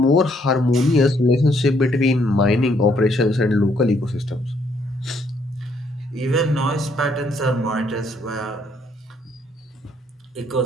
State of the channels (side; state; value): both; normal; correlation 0.69